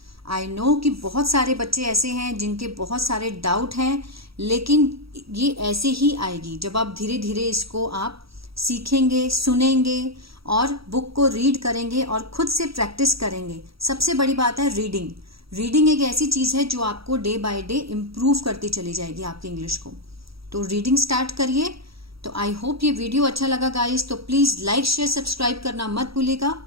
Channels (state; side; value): late; left; 0.76 ms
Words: I know कि बहुत सारे बच्चे ऐसे हैं जिनके बहुत सारे डाउट हैं, लेकिन ये ऐसे ही आएगी जब आप धीरे धीरे इसको आप सीखेंगे, सुनेंगे और बुक को रीड करेंगे और खुद से प्रैक्टिस करेंगे। सबसे बड़ी बात है रीडिंग। रीडिंग एक ऐसी चीज़ है जो आपको डे बाय डे इम्प्रूव करती चली जाएगी आपकी इंग्लिश को। तो रीडिंग स्टार्ट करिए। तो आई होप ये वीडियो अच्छा लगा गाइस, तो प्लीज़ लाइक शेयर सब्सक्राइब करना मत भूलिएगा।